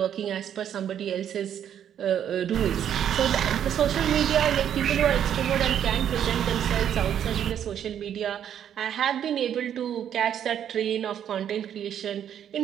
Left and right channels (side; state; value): left; quieter; 9.6 dB